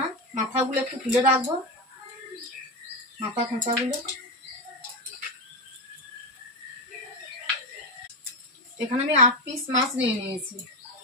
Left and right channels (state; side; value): normal; both; correlation 0.14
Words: মাথাগুলো একটু তুলে রাখবো, মাথা খোঁচাগুলো। এখানে আমি 8 পিস মাছ নিয়ে নিয়েছি।